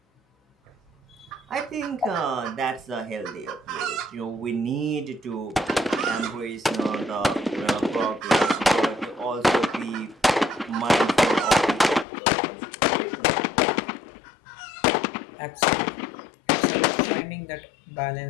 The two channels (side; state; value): right; drops out; at 12.1 s